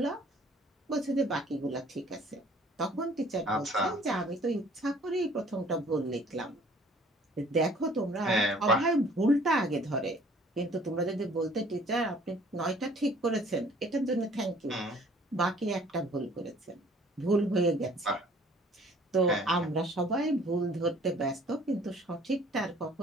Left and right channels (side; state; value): both; normal; correlation 0.55